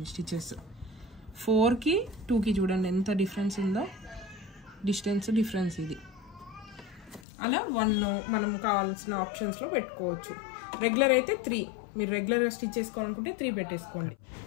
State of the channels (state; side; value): drops out; right; at 7.2 s